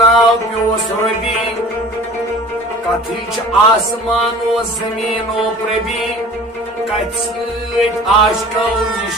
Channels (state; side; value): normal; both; correlation 0.43